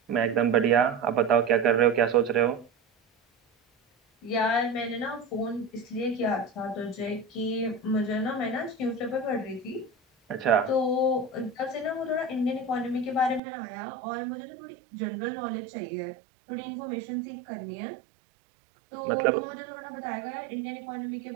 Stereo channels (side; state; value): left; drops out; at 13.4 s